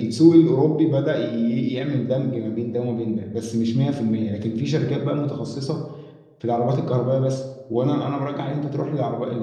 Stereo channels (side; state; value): both; identical; correlation 1.00